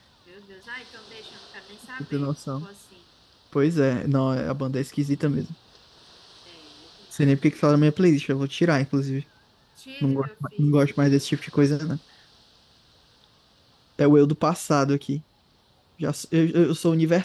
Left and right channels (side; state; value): both; identical; correlation 1.00